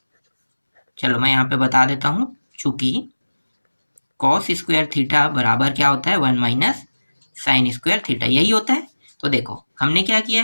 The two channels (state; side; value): inverted; both; correlation -1.00